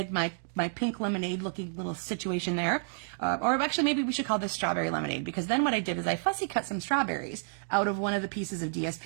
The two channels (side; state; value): left; silent; digital silence